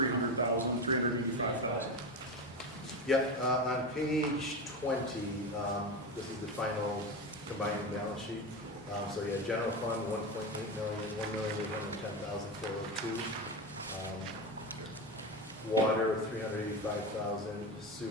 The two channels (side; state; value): both; normal; correlation 0.20